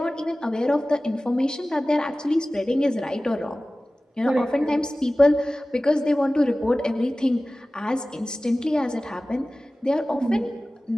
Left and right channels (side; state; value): both; normal; correlation 0.97